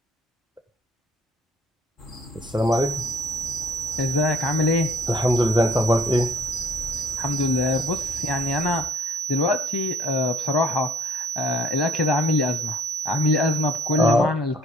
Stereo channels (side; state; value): both; normal; correlation 0.61